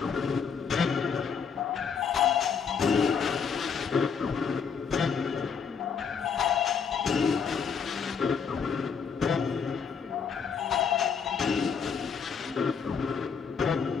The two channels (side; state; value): right; quieter; 6.4 dB